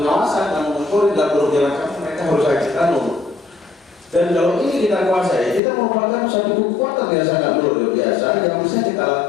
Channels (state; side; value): drops out; right; at 5.6 s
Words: kanun monitoring, dan berbagai macam mereka harus ada kanun. Dan kalau ini kita kuasai, kita merupakan satu kekuatan yang sangat luar biasa yang bisa kita